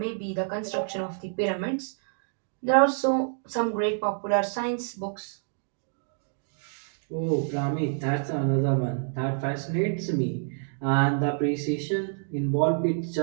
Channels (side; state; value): left; silent; digital silence